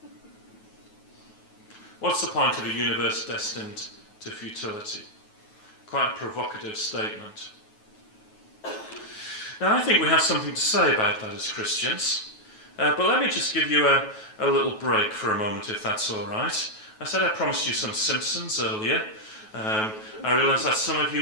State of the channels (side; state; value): right; late; 9.3 ms